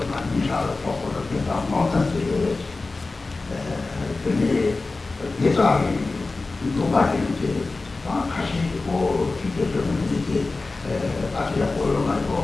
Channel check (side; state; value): right; quieter; 3.5 dB